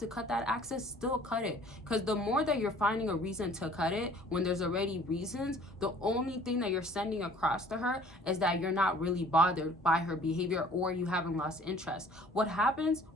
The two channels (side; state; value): both; normal; correlation 0.53